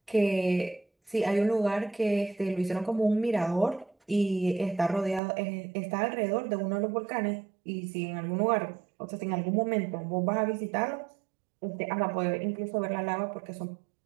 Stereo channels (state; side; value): drops out; left; at 5.2 s